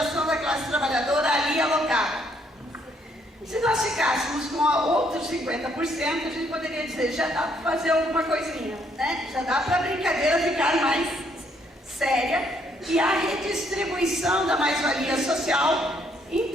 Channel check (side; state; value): both; normal; correlation 0.69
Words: da classe trabalhadora ali alocada. Se nós ficássemos com outros 50%, a gente poderia dizer, já dá para fazer alguma coisinha, né? Já dá para a brincadeira ficar mais séria e a redistribuição da mais-valia social em